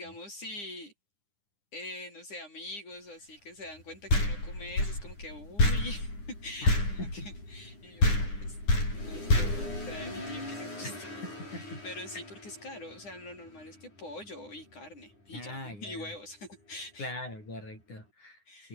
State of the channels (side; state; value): right; late; 9.8 ms